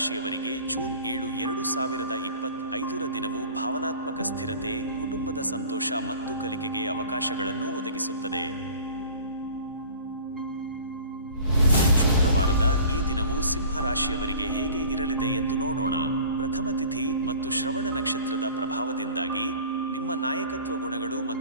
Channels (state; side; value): inverted; both; correlation -0.44